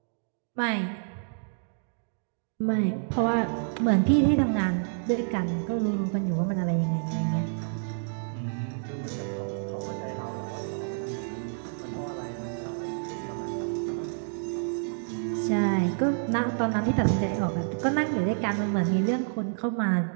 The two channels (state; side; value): silent; left; digital silence